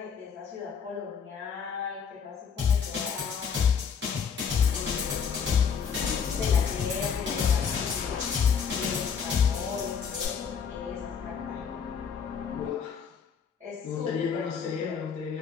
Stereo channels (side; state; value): right; quieter; 6.7 dB